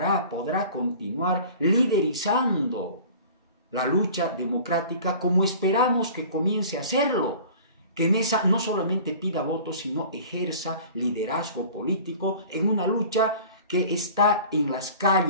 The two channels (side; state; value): both; inverted; correlation -0.44